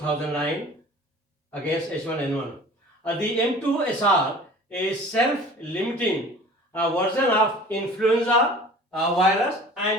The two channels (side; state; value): both; normal; correlation 0.45